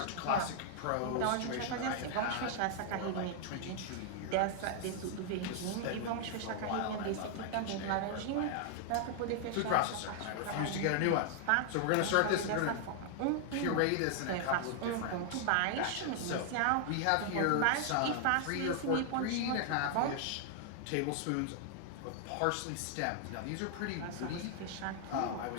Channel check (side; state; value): both; different; correlation 0.00